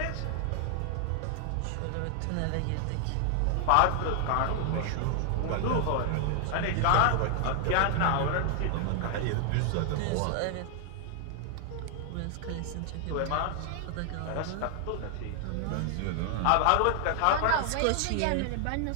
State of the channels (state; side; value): different; both; correlation 0.00